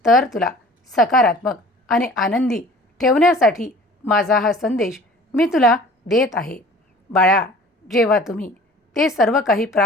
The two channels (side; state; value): both; normal; correlation 0.47